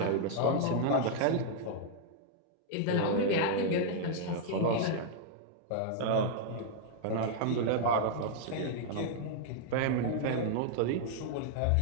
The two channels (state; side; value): different; both; correlation -0.01